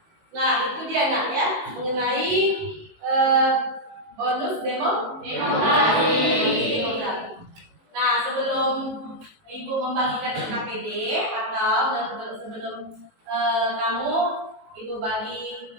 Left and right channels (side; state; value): left; late; 19 ms